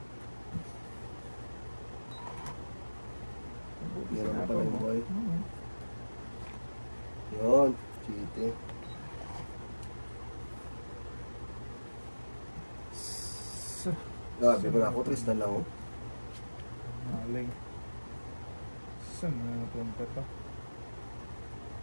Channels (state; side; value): inverted; both; correlation -1.00